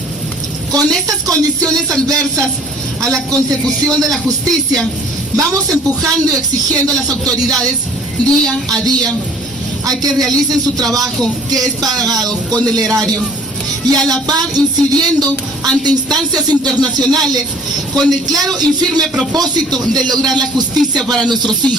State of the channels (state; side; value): normal; both; correlation 0.53